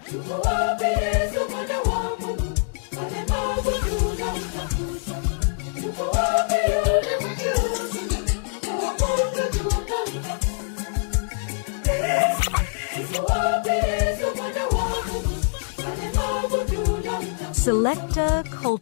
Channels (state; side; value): silent; right; digital silence